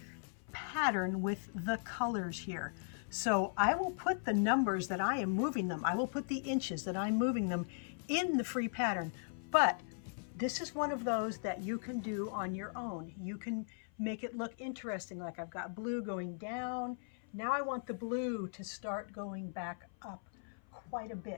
pattern with the colors here. So I will put the numbers that I am moving them, I will put the inches that I'm moving them in the free pattern, but This is one of those that you can do on your own. You can make it look interesting, like I've got blue going down. Now I want the blue to start going back up quite a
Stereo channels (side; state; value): right; silent; 52 dB below the other